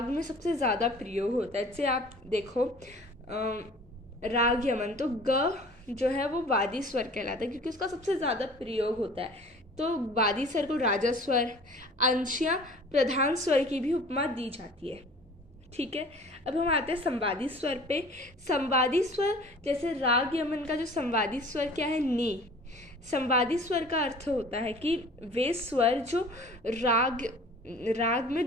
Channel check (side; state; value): both; normal; correlation 0.46